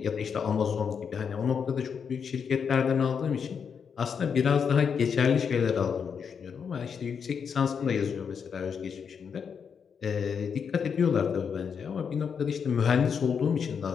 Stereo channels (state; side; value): quieter; right; 6.7 dB